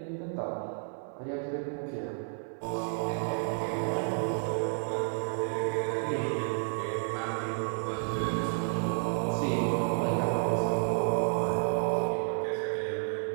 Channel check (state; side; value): silent; left; 57 dB below the other